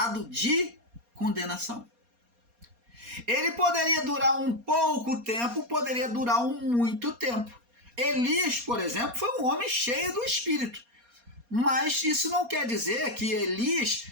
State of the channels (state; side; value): late; left; 4.2 ms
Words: de condenação. Ele poderia durar um pouco tempo, poderia durar muito tempo. Elias, por exemplo, foi um homem cheio do Espírito. Mas isso não quer dizer que Elias